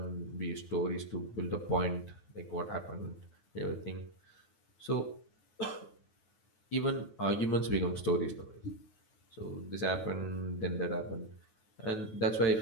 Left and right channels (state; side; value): late; right; 9.4 ms